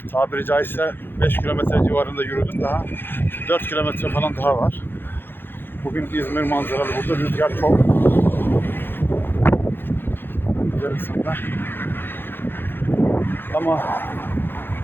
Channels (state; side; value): late; right; 0.10 ms